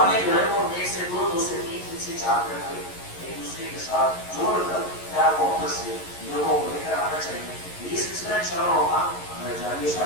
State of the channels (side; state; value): right; late; 11 ms